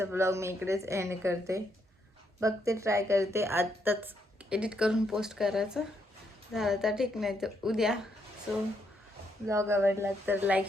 ब्लॉग मी इकडेच एंड करते. बघते, ट्राय करते आत्ताच एडिट करून पोस्ट करायचं. झालं तर ठीक, नाही तर उद्या. सो ब्लॉग आवडला तर लाईक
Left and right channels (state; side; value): normal; both; correlation 0.76